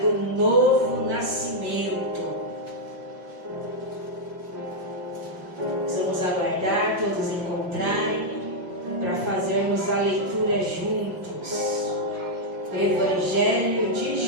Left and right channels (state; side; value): late; left; 5.5 ms